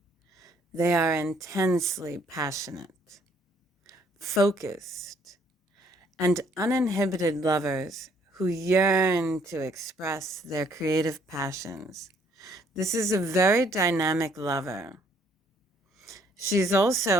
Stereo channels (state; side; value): normal; both; correlation 0.65